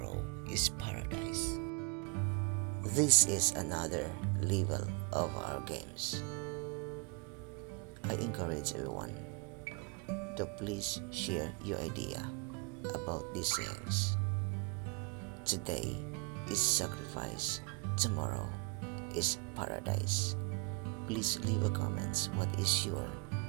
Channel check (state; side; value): quieter; left; 30.1 dB